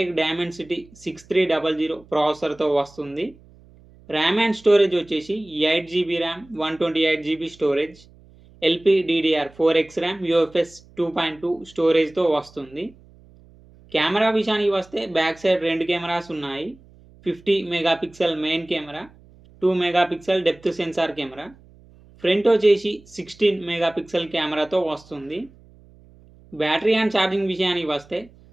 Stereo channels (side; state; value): right; noise; hum, 26 dB below the sound